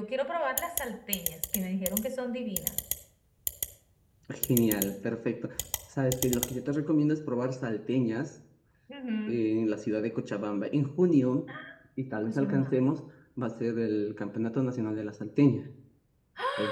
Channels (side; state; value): both; identical; correlation 1.00